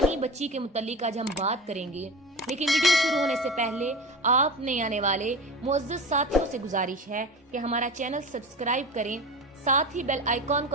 بچی کے متعلق آج ہم بات کریں گے، لیکن ویڈیو شروع ہونے سے پہلے آپ نئے آنے والے معزز ساتھیوں سے گزارش ہے کہ ہمارا چینل سبسکرائب کریں، ساتھ ہی بیل آئیکن کو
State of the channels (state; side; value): normal; both; correlation 0.30